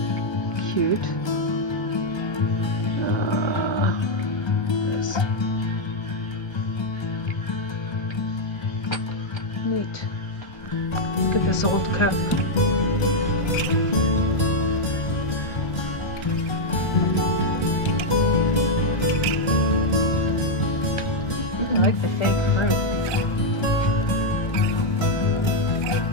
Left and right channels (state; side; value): late; right; 1.3 ms